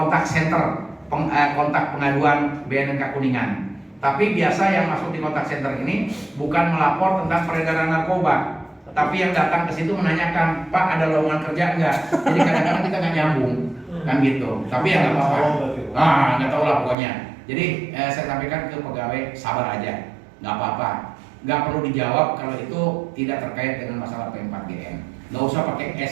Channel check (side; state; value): left; drops out; at 16.9 s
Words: center kontak pengaduan BNNK Kuningan. Tapi biasa yang masuk di kontak center ini bukan melapor tentang peredaran narkoba, tapi yang datang ke situ menanyakan, Pak ada lowongan kerja enggak? Jadi kadang-kadang kita nggak nyambung kan gitu. Tapi ya nggak apa-apa. Nggak tahu lah pokoknya. Jadi saya sampaikan ke pegawai sabar aja, nggak apa-apa. Nggak perlu dijawab kalau itu tidak terkait dengan masalah P4GN. Nggak usah pakai